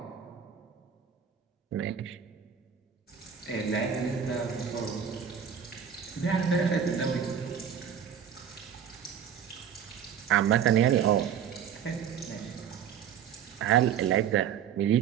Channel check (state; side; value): quieter; left; 8.2 dB